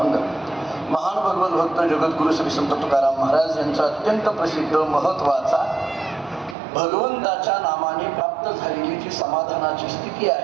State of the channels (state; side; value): drops out; left; at 6.6 s